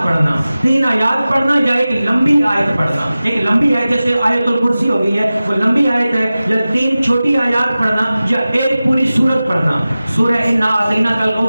پڑھنا، 3 آیات پڑھنا یا ایک لمبی آیت پڑھنا۔ ایک لمبی آیت جیسے آیت الکرسی ہو گئی ہے وہ لمبی آیت ہے، یا 3 چھوٹی آیات پڑھنا یا ایک پوری سورت پڑھنا۔ سورہ انا اعطیناک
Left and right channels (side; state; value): both; inverted; correlation -0.96